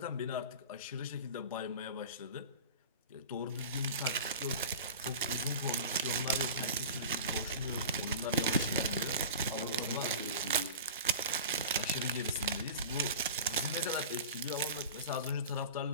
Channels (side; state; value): both; inverted; correlation -0.35